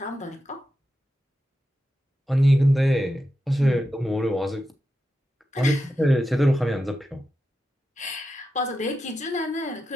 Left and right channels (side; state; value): both; normal; correlation 0.89